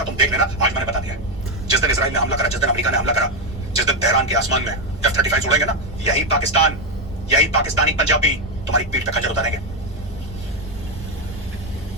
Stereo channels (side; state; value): both; normal; correlation 0.07